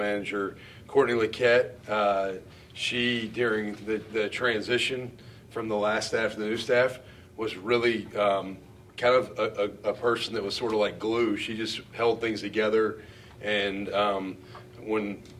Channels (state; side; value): identical; both; correlation 1.00